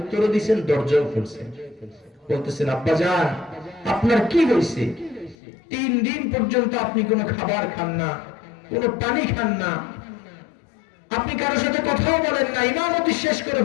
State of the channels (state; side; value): drops out; right; at 5.4 s